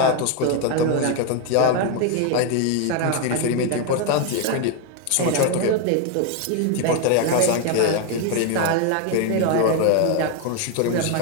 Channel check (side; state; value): both; different; correlation 0.01